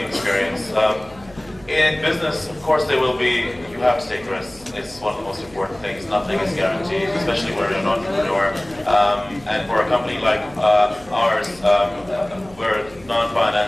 experience. In business, of course, there will be, you have to take risks. It's one of the most important things. Nothing is guaranteed, especially when you're an entrepreneur. And for a company like ours, we're a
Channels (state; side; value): noise; right; hum, 23 dB below the sound